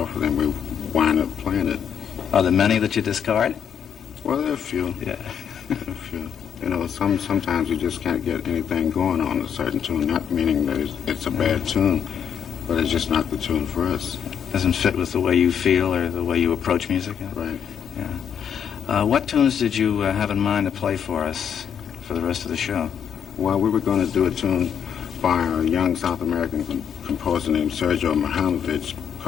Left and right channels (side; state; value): right; quieter; 8.1 dB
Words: of them, we wind up playing it. Are there many that you discard? Well, there are a few. Yeah. A few. You know, sometimes you just can't get anything going on a certain tune, not meaning that it's a bad tune, but it's just not the tune for us. Doesn't fit with the way you feel or the way you approach music? Right. Yeah. What tunes did you have in mind to play for us for the rest of the show? Well, we were going to do a tune by a young South American composer named Sergio Mihailovich